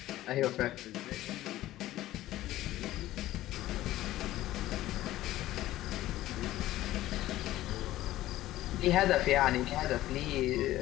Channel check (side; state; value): right; quieter; 15.2 dB